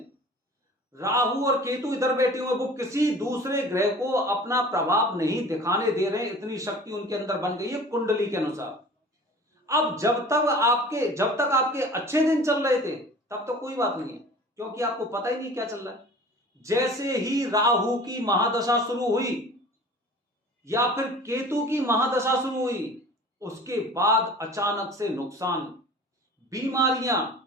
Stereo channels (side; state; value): both; normal; correlation 0.43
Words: राहु और केतु इधर बैठे हुए, वो किसी दूसरे ग्रह को अपना प्रभाव नहीं दिखाने दे रहे, इतनी शक्ति उनके अंदर बन गई है कुंडली के अनुसार। अब जब तक आपके अच्छे दिन चल रहे थे तब तो कोई बात नहीं है, क्योंकि आपको पता ही नहीं क्या चल रहा है। जैसे ही राहु की महादशा शुरू हुई या फिर केतु की महादशा शुरू हुई, उसके बाद अचानक से नुकसान, बीमारियां,